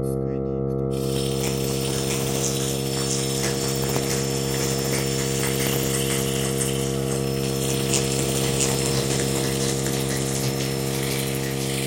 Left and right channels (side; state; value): both; identical; correlation 1.00